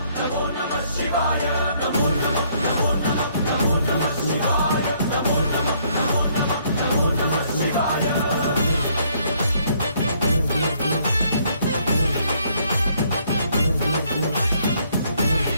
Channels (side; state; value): both; inverted; correlation -0.66